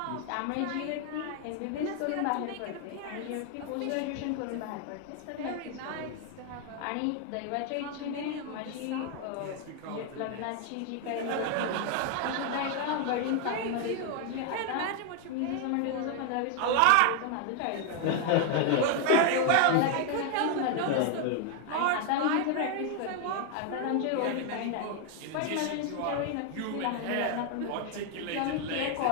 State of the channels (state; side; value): different; both; correlation 0.00